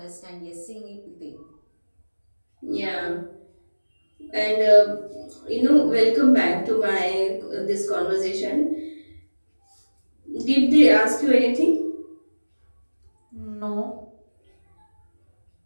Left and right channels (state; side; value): inverted; both; correlation -1.00